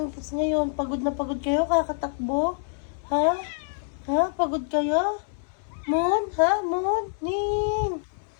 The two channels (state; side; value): silent; right; 61 dB below the other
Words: tas ngayon. Pagod na pagod kayo, kakatakbo? Ha? Ha? Pagod kayo? Moon? Ha? Moon? Ning?